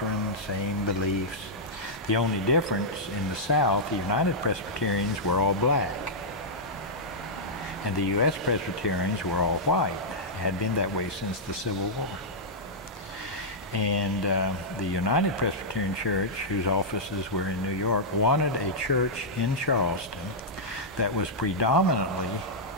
same beliefs. The only difference in the South, the United Presbyterians were all black. And the U.S. Presbyterians were all white. It had been that way since the Civil War. And the United Presbyterian Church, whose offices were in New York, wanted a church in Charleston that was predominantly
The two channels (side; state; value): both; normal; correlation -0.09